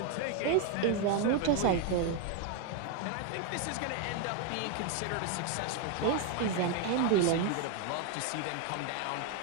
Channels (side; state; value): both; different; correlation 0.01